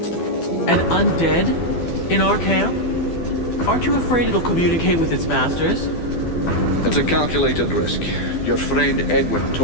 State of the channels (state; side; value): late; right; 12 ms